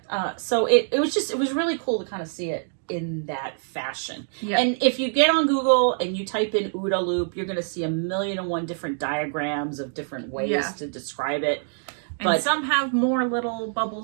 So it was really cool to kind of see it in that fashion. Yeah. And if you get on Google and you type in OODA Loop, you're going to see 1,000,001 different diagrams of different ways to describe it. And some have more little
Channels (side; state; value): left; silent; digital silence